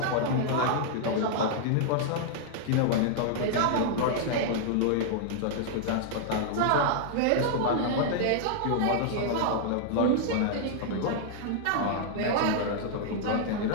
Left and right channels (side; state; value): both; different; correlation -0.01